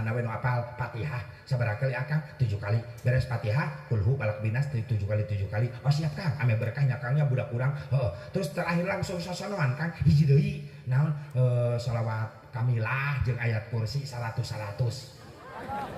we nu apal Fatihah sabaraha kali akang 7 kali beres Fatihah kulhu balak binas 7 kali oh siap Kang ame berkah nyakangnya budak urang terus terakhir langsung sasanoan Kang hiji deui naon shalawat kamilah jeung ayat kursi 100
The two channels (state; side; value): identical; both; correlation 1.00